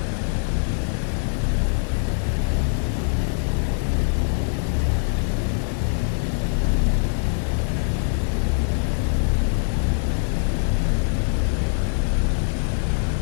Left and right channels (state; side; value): silent; right; digital silence